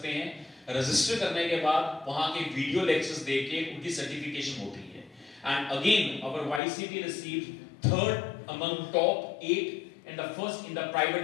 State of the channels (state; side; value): drops out; right; at 6.6 s